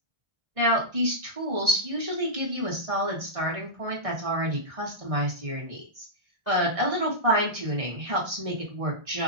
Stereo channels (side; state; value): left; late; 1.4 ms